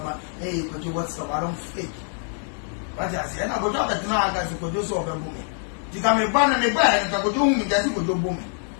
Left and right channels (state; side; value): silent; right; 57 dB below the other